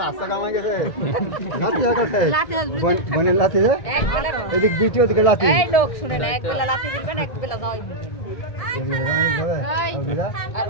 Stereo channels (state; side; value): late; right; 1.7 ms